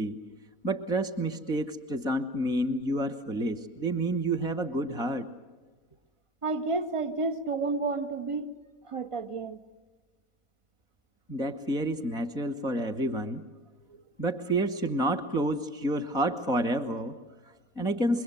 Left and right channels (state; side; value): late; right; 4.0 ms